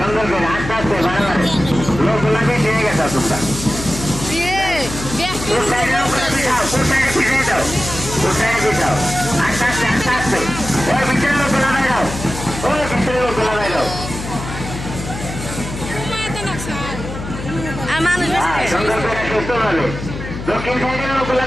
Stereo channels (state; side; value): noise; left; hum, 9 dB below the sound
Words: করে আস্তে আস্তে বাড়াবাড়ি লোকগুলা বেশি হয়ে গেছে তোমরা। আস্তে আস্তে আস্তে আস্তে ওই ভিতরে লোকগুলা বাইরাও, ওই ভিতরে লোকগুলা বাইরাও। সুন্দর করে সুস্থ ভাবে দক্ষিণ সাইডের লোকগুলা